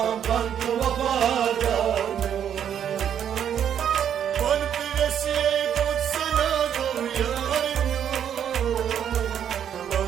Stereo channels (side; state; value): left; quieter; 9.1 dB